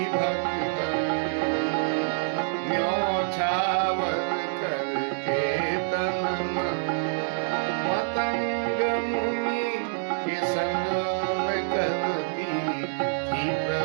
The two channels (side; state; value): left; silent; digital silence